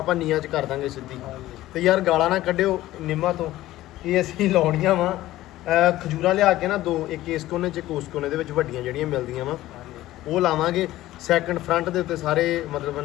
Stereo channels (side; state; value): right; quieter; 15.6 dB